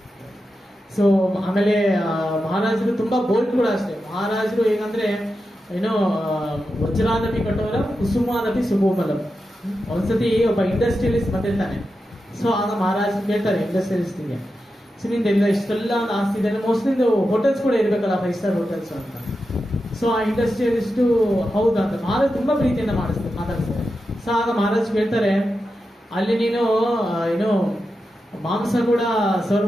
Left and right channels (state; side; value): normal; both; correlation 0.90